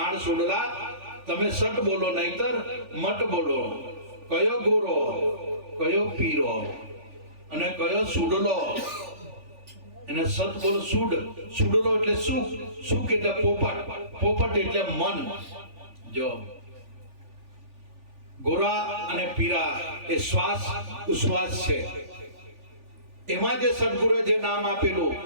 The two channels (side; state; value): left; late; 3.4 ms